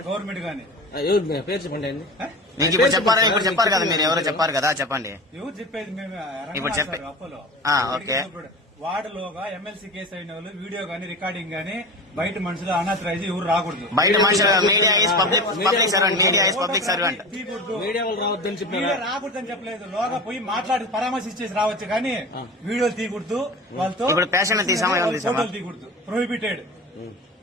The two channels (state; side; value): normal; both; correlation 0.31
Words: గవర్నమెంట్ గానీ ఎవరు పేరు చెప్పండి అండి. మీకు ఇప్పుడు చెప్పారు కదా, మీరు ఎవరో చెప్పారు కదా, చెప్పండి. ఎవరు చెప్పేది? మేము ఇప్పుడు చెప్పే అపోలో ఓకే. వార్డులోగా ఎమ్మెల్సీ కేసు అయిన వాళ్ళు వీడియో గానీ రికార్డింగ్ గానీ బయట మనుషులు అనాథరైజ్ ఎవరు రాకూడదు. బయట మనుషులు media is public servant, media is public servant. Media వాళ్ళు రావద్దని చెప్పారు. రాకూడదని చెప్పలేదు, లోగా పోయి మాట్లాడి పరామర్శించేసి రావచ్చు కానీ వీడియోలు తీయకూడదు. వాళ్ళతో ఇప్పుడు పేషెంట్ ఫోటోలు తీయకూడదు, ప్రొహిబిటెడ్.